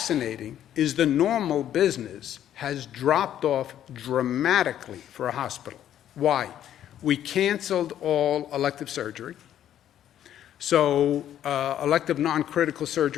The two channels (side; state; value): right; quieter; 11.0 dB